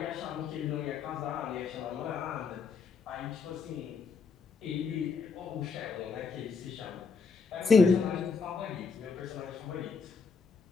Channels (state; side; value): quieter; right; 5.1 dB